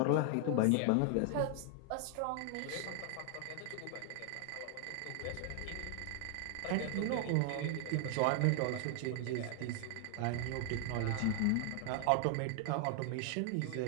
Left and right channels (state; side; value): different; both; correlation 0.00